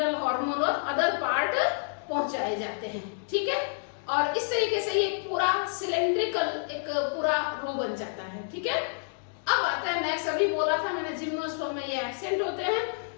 हार्मोन और अदर पार्ट पहुंचाए जाते हैं। ठीक है, और इस तरीके से ये पूरा सिलेंड्रिकल एक पूरा रो बन जाता है। ठीक है, अब आता है नेक्स्ट, अभी बोला था मैंने जिम्नोस्पर्म में ये एब्सेंट होते हैं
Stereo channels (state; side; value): silent; right; digital silence